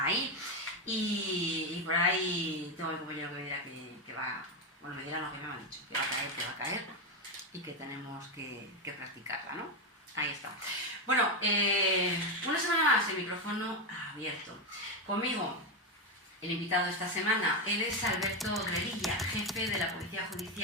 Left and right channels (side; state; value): both; normal; correlation 0.10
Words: ahí. Y por ahí tengo el compañero que me dirá que va, bueno, me dirá lo que me han dicho, que va a caer y que tenemos que practicarla, ¿no? Ahí está. Bueno, una semana más el micrófono abierto. Conmigo, el invitado de esta semana, él es Alberto Revilla, jefe de la Policía